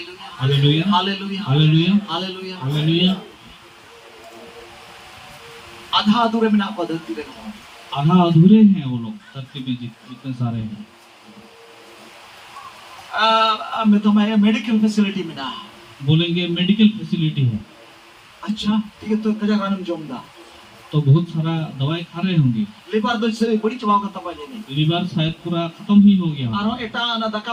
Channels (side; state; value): both; identical; correlation 1.00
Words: hallelujah, hallelujah hallelujah, hallelujah hallelujah. आधा अधूरे में ना पद्धति रे आधा अधूरे हैं वो लोग धरती में जितने सारे हैं। मैं तो मैं मेडिकल फैसिलिटी में ना बोलेंगे मेडिकल फैसिलिटी है, अच्छा ठीक है तो कजा गानम जोमदा तो बहुत सारा दवाई खा रहे होंगे। लेबार दो से बड़ी चबाव का तबा जेने लीवर शायद पूरा खत्म ही हो गया, आरो एटा ना